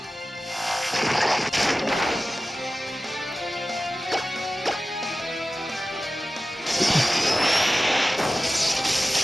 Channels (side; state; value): both; normal; correlation 0.96